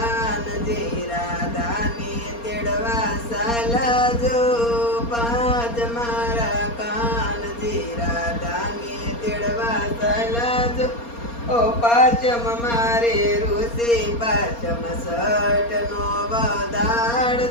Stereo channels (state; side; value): late; right; 4.3 ms